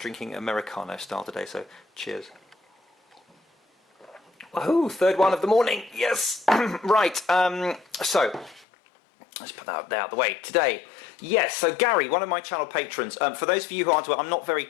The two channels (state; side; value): drops out; right; at 8.7 s